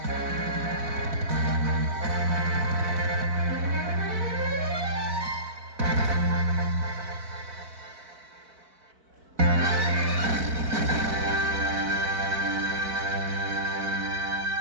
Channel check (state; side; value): late; left; 4.5 ms